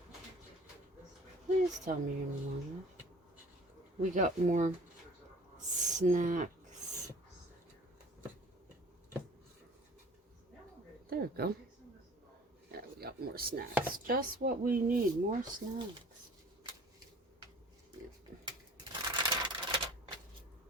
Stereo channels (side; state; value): both; normal; correlation 0.48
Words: Please tell me you're long enough. We got more snacks. There we go. Yeah, we got more snacks. Just what we need. More snacks.